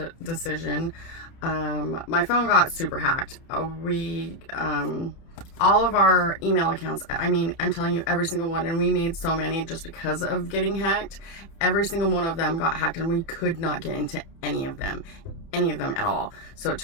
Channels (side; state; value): right; late; 30 ms